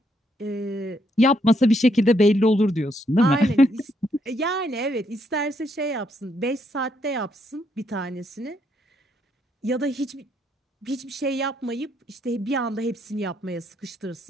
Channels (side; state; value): both; normal; correlation 0.74